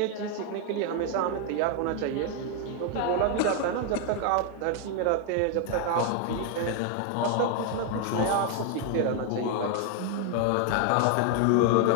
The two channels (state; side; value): different; both; correlation 0.00